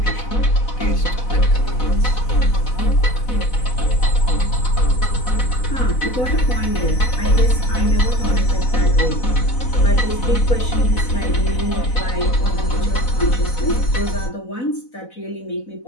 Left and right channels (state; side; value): late; right; 4.0 ms